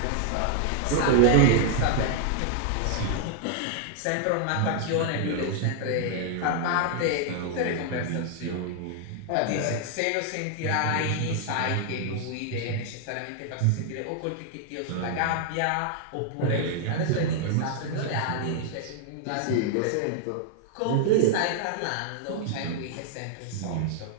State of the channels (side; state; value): both; different; correlation 0.00